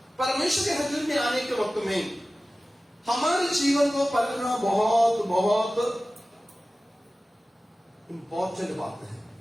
परमेश्वर के हजूर में आने के वक्त में हमारे जीवन को परखना बहुत बहुत इंपॉर्टेंट बात है।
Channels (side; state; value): both; normal; correlation 0.96